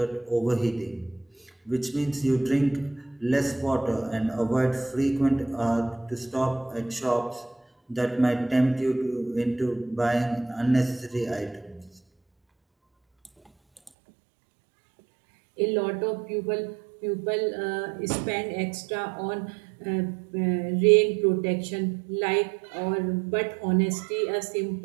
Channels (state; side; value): drops out; left; at 13.9 s